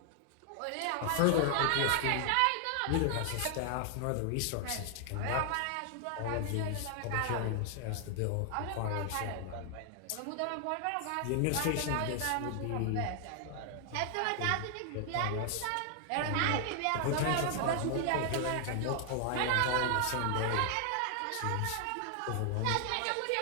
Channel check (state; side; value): different; both; correlation 0.00